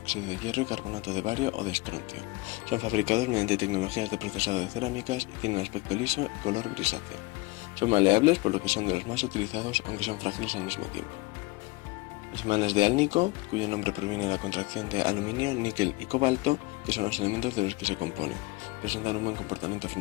de hierro y carbonato de bario o de estroncio. Son fabricados mediante tecnologías de procesado de cerámicas y tienen aspecto liso y color grisáceo. Son maleables, por lo que son de los más utilizados, aunque son frágiles al mismo tiempo. Los imanes de Alnico, cuyo nombre proviene de la contracción de aluminio, níquel y cobalto, que son los elementos de los que se componen, presentan un buen comportamiento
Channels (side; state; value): right; quieter; 22.2 dB